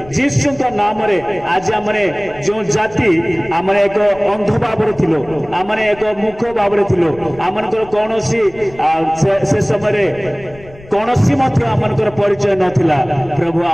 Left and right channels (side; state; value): left; noise; rumble, 21 dB below the sound